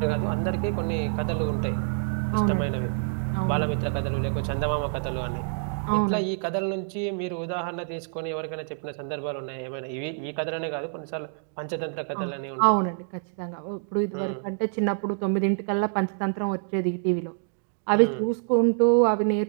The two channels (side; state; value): left; silent; digital silence